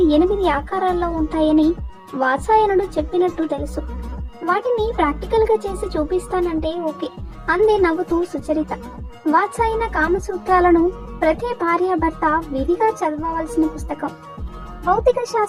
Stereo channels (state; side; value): identical; both; correlation 1.00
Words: 8 ఆకారాల్లో ఉంటాయని వాత్సాయనుడు చెప్పినట్టు తెలుసు. వాటిని ప్రాక్టికల్ గా చేసి చూపిస్తానంటే ఓకే అందే నవ్వుతూ సుచరిత. వాత్సాయన కామసూత్రాలను ప్రతి భార్య భర్త విధిగా చదవవలసిన పుస్తకం. భౌతిక